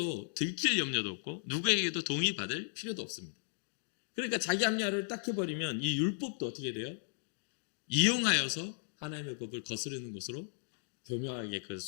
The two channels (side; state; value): right; silent; digital silence